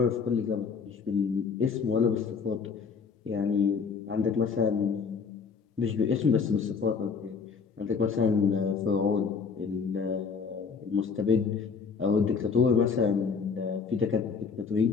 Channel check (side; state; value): right; quieter; 5.5 dB